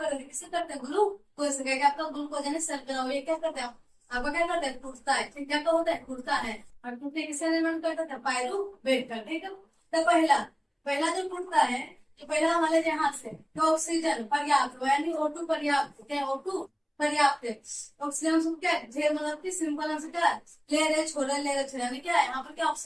किसे करते हैं, ग्लूकोज से। क्या आपका ग्लूकोज यानी शर्करा, ये क्या करते हैं आपका, क्या करते हैं, टूटता है। ठीक, क्या तो होता है, टूटता है। और टूटने किसे निर्माण करता है, पायरुवेट का। ठीक है, तो पहला पहला जो टूटता है, तो पहला हमारे यहाँ से तो ऑक्सीजन पर्याप्त हो, यानी O2 पर्याप्त, क्या O2 पर्याप्त है। ऑक्सीजन हम क्या है, ढेर मतलब कि सिंपल आंसर क्या है, ले रहे छोड़े, ले रहे छोड़े, यानी क्या है यहाँ पर क्या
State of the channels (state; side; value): identical; both; correlation 1.00